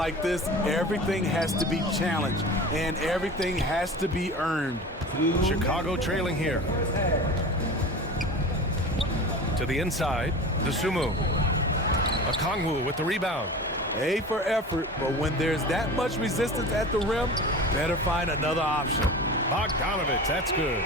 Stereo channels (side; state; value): both; normal; correlation 0.34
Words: this, everything has to be challenged and everything has to be earned. Chicago trailing here. To the inside, Dosunmu. Okongwu with the rebound. A for effort, but when there's that much resistance at the rim, better find another option. Bogdanovich, that's good.